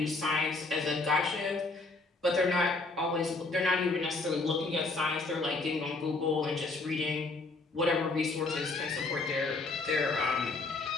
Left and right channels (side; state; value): right; quieter; 3.5 dB